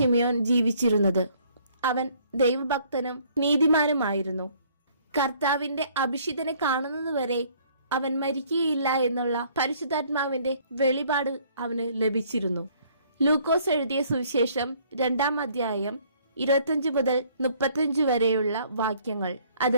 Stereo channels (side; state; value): both; inverted; correlation -0.61